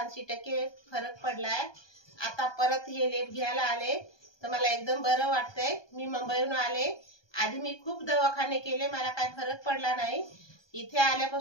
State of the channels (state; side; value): late; right; 1.2 ms